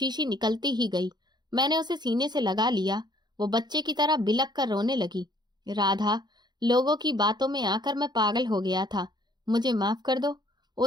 निकलती ही गई। मैंने उसे सीने से लगा लिया। वो बच्चे की तरह बिलक कर रोने लगी। राधा, लोगों की बातों में आकर मैं पागल हो गया था, मुझे माफ कर दो।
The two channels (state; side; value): late; left; 0.21 ms